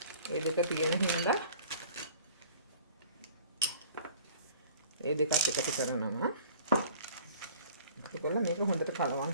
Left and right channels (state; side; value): inverted; both; correlation -0.49